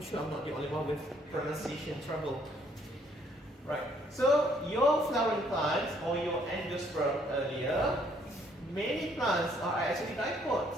sure I'm not the only one with pronunciation trouble. Right. So your flowering plants or your endosperm earlier, many plants are actually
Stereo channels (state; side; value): normal; both; correlation 0.65